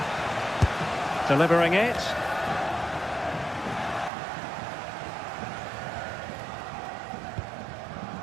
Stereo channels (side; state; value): left; drops out; at 4.1 s